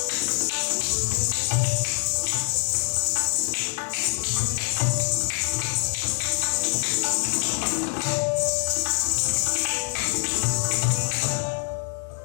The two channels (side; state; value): right; silent; digital silence